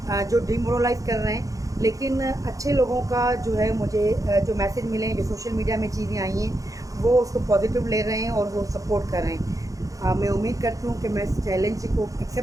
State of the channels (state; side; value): late; left; 0.16 ms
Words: جو ڈیمورلائز کر رہے ہیں۔ لیکن اچھے لوگوں کا جو ہے مجھے جو میسج ملے ہیں، جو سوشل میڈیا میں چیزیں آئی ہیں، وہ اس کو پازیٹیو لے رہے ہیں اور وہ سپورٹ کر رہے ہیں۔ میں امید کرتی ہوں کہ میں اس چیلنج کو